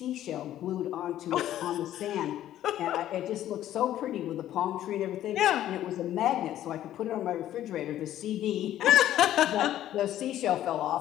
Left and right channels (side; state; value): right; quieter; 12.5 dB